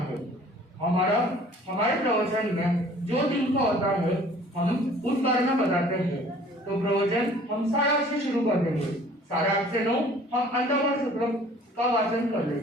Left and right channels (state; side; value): normal; both; correlation 0.52